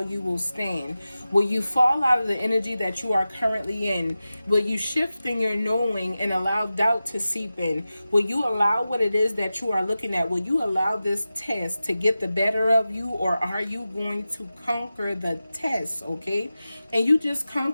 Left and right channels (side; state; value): both; inverted; correlation -0.94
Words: you will stand. Will you fall out of the energy that you are currently in? Will you shift in your knowing and allow doubt to seep in? Will you allow what it is that you are looking at? Will you allow this test to get the better of you, or are you going to conquer the test? Okay, and you just